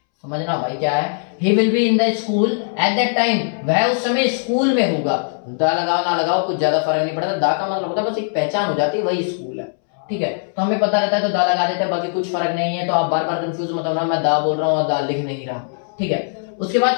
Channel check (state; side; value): silent; right; 65 dB below the other